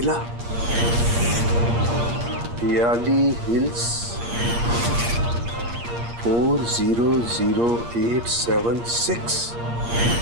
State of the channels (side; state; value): left; late; 8.5 ms